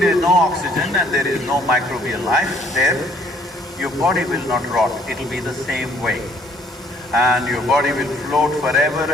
is no oxygen and there is no microbial life there, your body will not rot, it'll be the same way. And your body will float forever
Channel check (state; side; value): normal; both; correlation 0.61